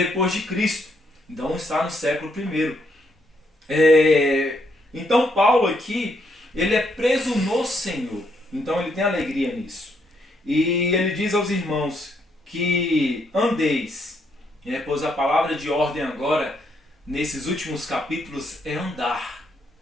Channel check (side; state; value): both; normal; correlation 0.74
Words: de Cristo. Então está no século I. Então Paulo aqui, ele é preso no Senhor. Então ele tem alegria nisso. E ele diz aos irmãos que andeis, pois a palavra de ordem agora, nesses últimos capítulos, é andar,